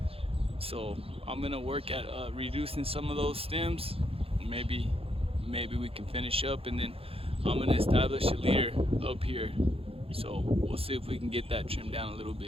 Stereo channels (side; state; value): left; late; 0.27 ms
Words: So I'm gonna work at reducing some of those stems. Maybe we can finish up, and then I'm gonna establish a leader up here. So we'll see if we can get that trimmed down a little